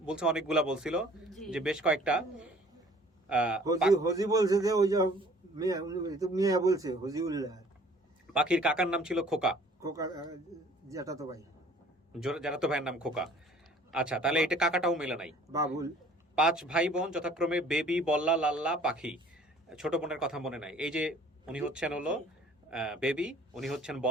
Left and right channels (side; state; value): both; normal; correlation 0.53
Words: বলছে অনেকগুলা বলছিল, যে বেশ কয়েকটা। হজি বলছে যে ওই যে মিয়া, উনি তো মিয়া বলছে হজিউল্লাহ। পাখির কাকার নাম ছিল খোকা, খোকা যেটা তো ভাই, যারা তো ভাইয়ের নাম খোকা। আচ্ছা, তাহলে এটা কাকাটাও মেলে নাই। বাবুল। 5 ভাই বোন যথাক্রমে বেবি, বল্লা, লাল্লা, পাখি। ছোট বোনের কথা মনে নাই। এই যে উনি হচ্ছেন হলো বেবি, উনি হচ্ছেন